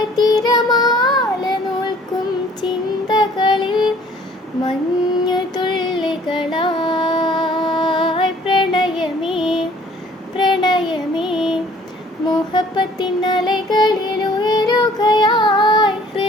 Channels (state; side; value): normal; both; correlation 0.55